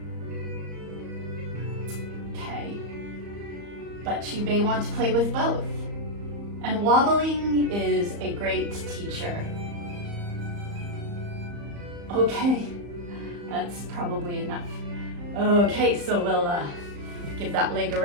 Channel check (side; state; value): left; late; 35 ms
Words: Okay, but you may want to play with both. And wobbling is a great teacher. Okay, that's probably enough. Okay, so we'll give that leg a